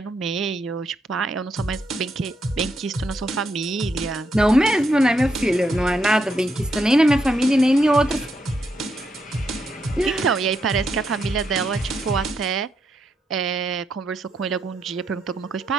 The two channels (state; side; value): normal; both; correlation 0.80